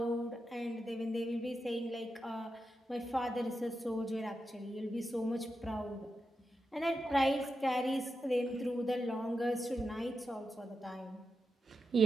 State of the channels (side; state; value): both; normal; correlation 0.88